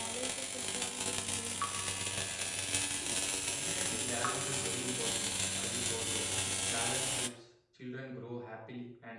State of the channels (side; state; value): both; identical; correlation 1.00